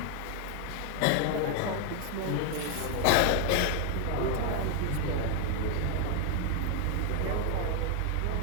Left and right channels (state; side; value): different; both; correlation 0.00